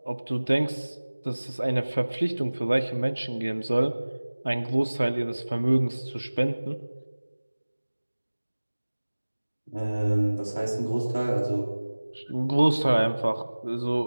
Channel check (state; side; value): inverted; both; correlation -1.00